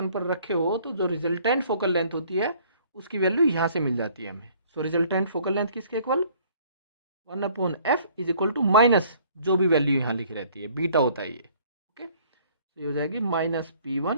पर रखे हो तो जो रिजल्टेंट फोकल लेंथ होती है उसकी वैल्यू यहाँ से मिल जाती है हमें। सो रिजल्टेंट फोकल लेंथ किसके equal 1 upon F is equal to minus जो भी वैल्यू यहाँ लिखी रहती है, बीटा होता है ये। ओके, तो ये हो जाएगी minus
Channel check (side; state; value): both; inverted; correlation -0.57